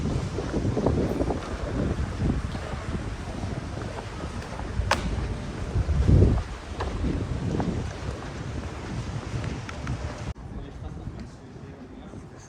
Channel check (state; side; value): identical; both; correlation 1.00